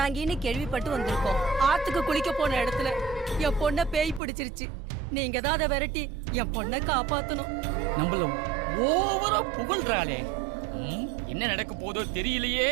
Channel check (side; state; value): left; drops out; at 4.2 s